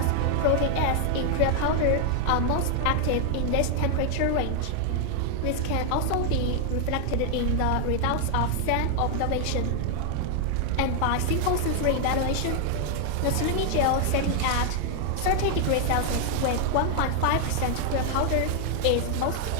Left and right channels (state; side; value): different; both; correlation 0.00